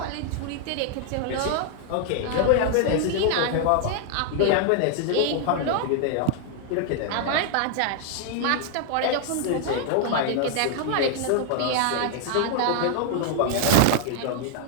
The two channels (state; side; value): different; both; correlation 0.00